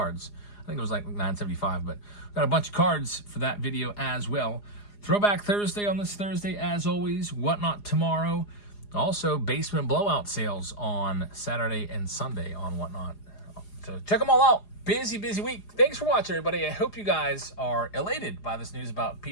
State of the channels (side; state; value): right; late; 4.9 ms